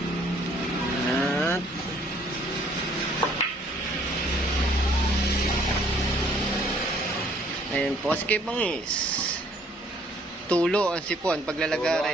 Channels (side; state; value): both; normal; correlation 0.61